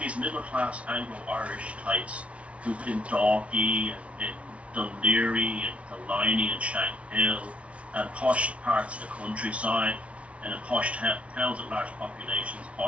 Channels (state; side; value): late; left; 0.063 ms